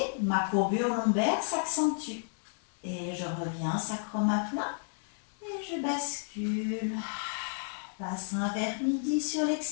Ma courbure lombaire s'accentue. Et je reviens, sacrum à plat. Et je bascule. Bassin vers midi sur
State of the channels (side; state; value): right; silent; 56 dB below the other